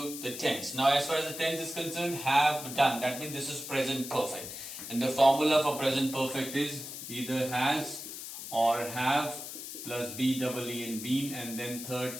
the tense. Now, as far as the tense is concerned, have done. That means this is present perfect. And the formula for present perfect is either has or have plus be, double E and been, and then third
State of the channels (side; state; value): left; noise; hiss, 9 dB below the sound